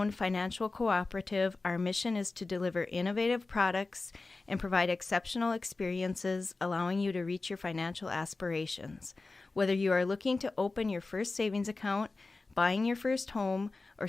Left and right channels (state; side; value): quieter; right; 3.5 dB